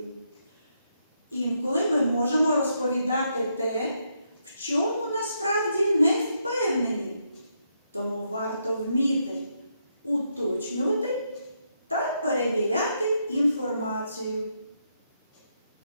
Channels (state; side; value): inverted; both; correlation -0.79